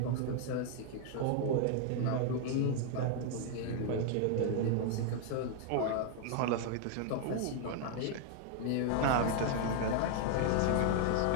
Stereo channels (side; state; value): both; different; correlation 0.00